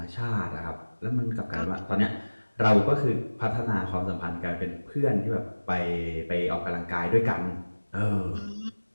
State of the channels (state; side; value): inverted; both; correlation -1.00